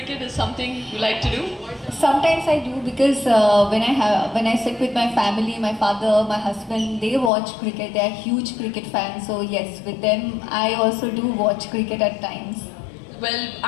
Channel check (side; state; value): right; drops out; at 7.3 s